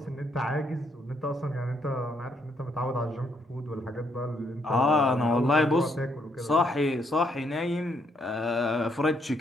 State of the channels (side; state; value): both; normal; correlation 0.73